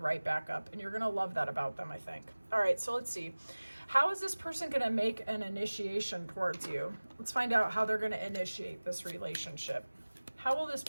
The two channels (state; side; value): inverted; both; correlation -1.00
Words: right back up, and you're going to love that about them, I think. All right, so let's see. How is this person going to make an initiation towards you? Let's find out how they're going to initiate this relationship. How will this